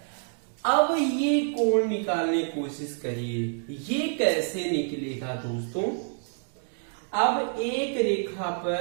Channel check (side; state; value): left; silent; digital silence